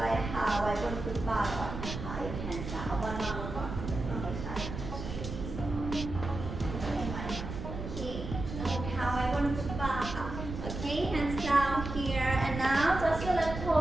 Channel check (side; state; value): right; noise; rumble, 7 dB below the sound